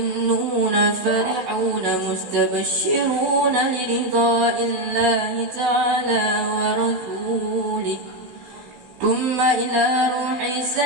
فرحون مستبشرون لرضاء الله تعالى ورسوله ثم إلى روح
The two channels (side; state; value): left; late; 16 ms